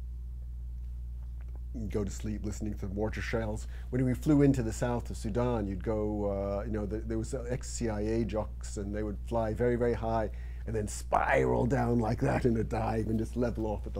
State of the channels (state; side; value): identical; both; correlation 1.00